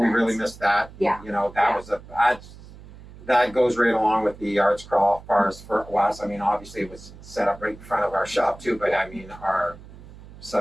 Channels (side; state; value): right; noise; hum, 18 dB below the sound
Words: event. really missed that. Yeah. That was that goes right along with the arts crawl for us. I mean, obviously it was set up right in front of our shop too, but I mean, our